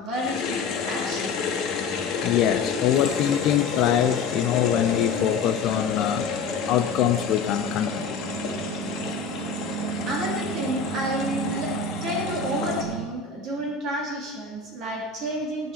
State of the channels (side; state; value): right; quieter; 5.3 dB